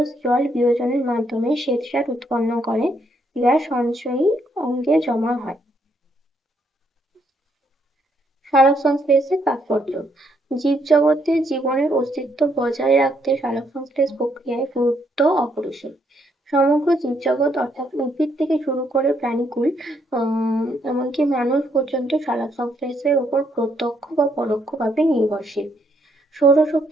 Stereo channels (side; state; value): both; normal; correlation 0.73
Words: জল বিয়োজনের মাধ্যমে শ্বেতসার উৎপন্ন করে, যা সঞ্চয়ী অঙ্গে জমা হয়। সালোকসংশ্লেষের তাৎপর্য, জীবজগতে জীবনের অস্তিত্ব বজায় রাখতে সালোকসংশ্লেষ প্রক্রিয়ায় গুরুত্ব অপরিসীম। সমগ্র জীবজগৎ অর্থাৎ উদ্ভিদ থেকে শুরু করে প্রাণীকুল এমনকি মানুষ পর্যন্ত সালোকসংশ্লেষের উপর প্রত্যক্ষ বা পরোক্ষভাবে নির্ভরশীল।